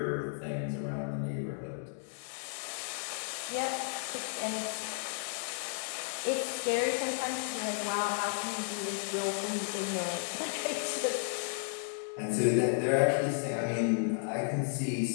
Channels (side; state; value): right; silent; digital silence